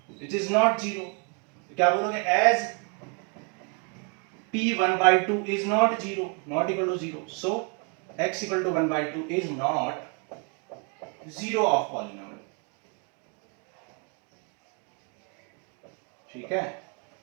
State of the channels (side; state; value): left; quieter; 35.6 dB